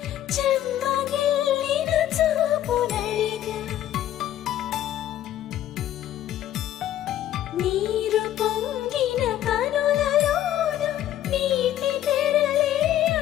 చెమ్మగిల్లిన చూపునడిగా నీరు పొంగిన కనులలోన నీటి తెరలే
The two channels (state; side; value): quieter; right; 12.2 dB